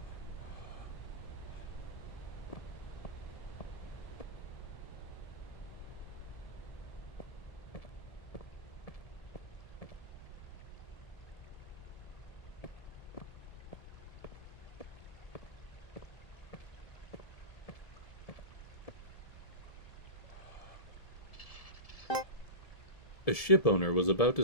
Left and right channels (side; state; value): right; late; 1.7 ms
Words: A shipowner was about to